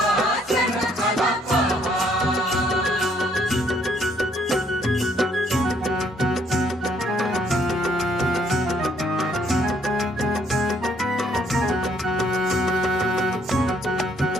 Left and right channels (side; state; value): both; normal; correlation 0.67